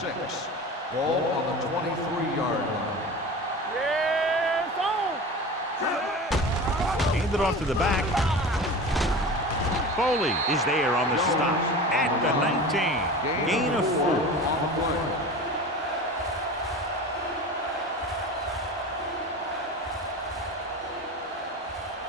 Ball on the 23-yard line. Yeah, it's on. Hand it off to the back. Foley is there on the stop at the 19. Gain of 4. On the play.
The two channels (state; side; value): normal; both; correlation 0.33